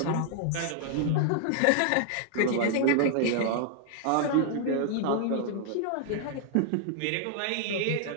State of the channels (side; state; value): both; different; correlation 0.00